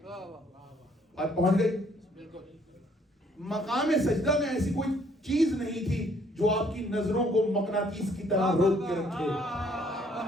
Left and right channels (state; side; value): normal; both; correlation 0.64